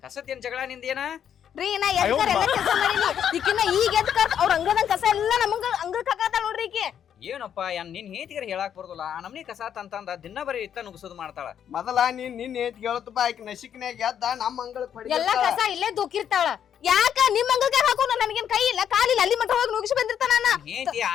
ಕಸದ ಏನ್ ಜಗಳ ನಿಂದೇನ ರೀ? ನಾ ಎದ್ಕರ ಎಲ್ಲ ಕೆಲಸ ಮಾಡೀನಿ. ಈಕಿನ ಈಗ ಎದ್ಕರ್ ಅವ್ರ ಅಂಗದಂಗ ಕಸ ಎಲ್ಲ ನಮಗ ಅಂಗಕ್ ಹಾಕತಾಳ ನೋಡ್ರಿ ಈಕಿ. ಏನಪ್ಪ ನಿನ್ ಹೇತಿಗರ ಹೇಳಾಕ್ ಬರೋದಿಲ್ಲ. ಆ ನಮ್ನಿ ಕಸ ತಂತಂದ ದಿನ ಬರೀ ಇತ್ತ ನುಗ್ಸೋದು ಮಾಡ್ತಾಳ. ಮೊದಲ ನಿನ್ ಏತ್ ಕೇಳತ್ತಪ್ಪ, ಆಕಿ ನಸಿಕ್ನ್ಯಾಗ ಎದ್ದ ನಮ್ಮ ಅಂಗಳಕ್ ಎಲ್ಲ ಕಸ ಇಲ್ಲೇ ದುಕ್ಕಿರ್ತಾಳ. ಯಾಕ ನಿಮ್ ಅಂಗಲ್ಕ ಹಾಕೋಣ? ನನಗೇನ್ ಕೈ ಇಲ್ಲ ಕಾಲಿಲ್ಲ, ಅಲ್ಲಿ ಮಟ್ಟ ಹೋಗಿ ನುಗ್ಸಿ ಬಂದಿರ್ತಾನ. ಹೇತಿ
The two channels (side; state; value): right; quieter; 9.0 dB